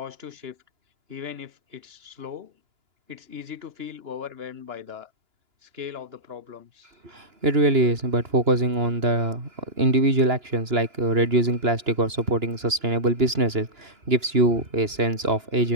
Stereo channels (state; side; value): late; left; 2.9 ms